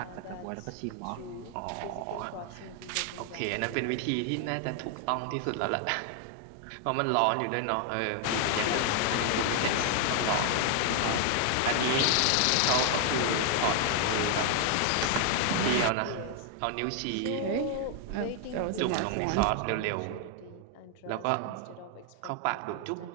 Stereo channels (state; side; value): different; both; correlation 0.00